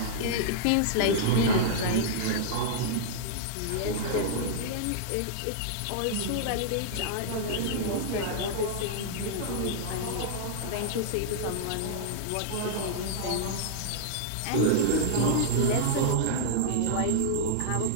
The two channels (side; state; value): both; different; correlation -0.01